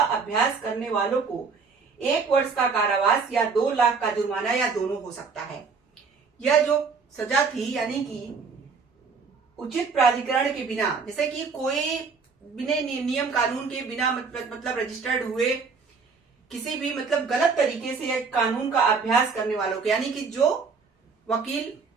अभ्यास करने वालों को 1 वर्ष का कारावास या 2 लाख का जुर्माना या दोनों हो सकता है। यह जो सजा थी, यानी कि उचित प्राधिकरण के बिना, जैसे कि कोई बिना नियम कानून के बिना मतलब रजिस्टर्ड हुए किसी भी मतलब गलत तरीके से कानून का अभ्यास करने वालों को, यानी कि जो वकील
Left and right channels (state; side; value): quieter; left; 5.0 dB